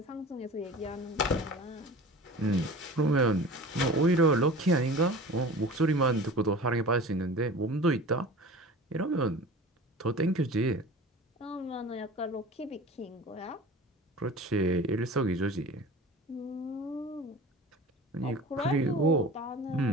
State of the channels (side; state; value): both; normal; correlation 0.38